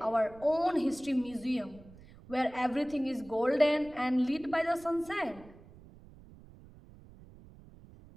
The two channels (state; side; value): noise; right; rumble, 21 dB below the sound